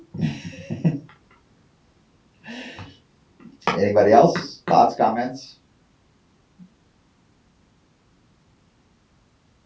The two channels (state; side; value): identical; both; correlation 1.00